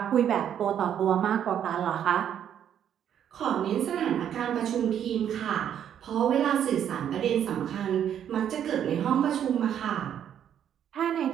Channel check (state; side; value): quieter; left; 9.5 dB